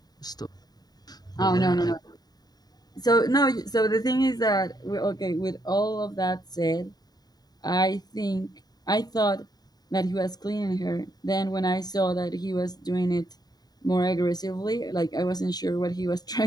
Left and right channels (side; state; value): right; late; 0.19 ms